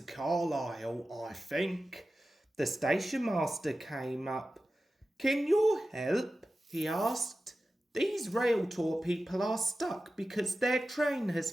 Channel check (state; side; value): normal; both; correlation 0.94